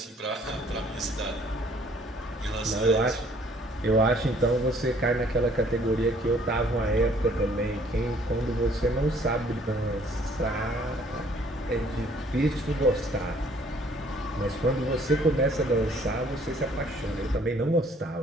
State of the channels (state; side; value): normal; both; correlation 0.60